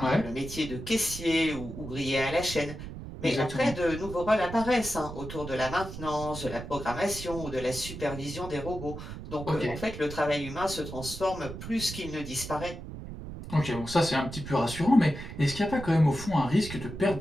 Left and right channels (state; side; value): noise; right; rumble, 10 dB below the sound